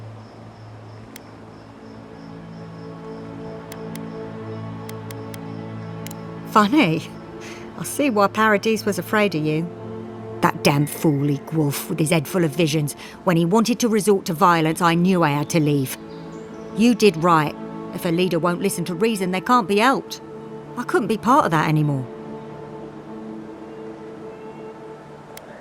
Funny. I see why Paradis was afraid of you. That damn fool Wolf with his head full of visions. When he wanted to resort to violence, I knew I had to leave. You did right. If a leader won't listen to reason, they can't be helped. I couldn't be part of that anymore.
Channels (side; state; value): both; identical; correlation 1.00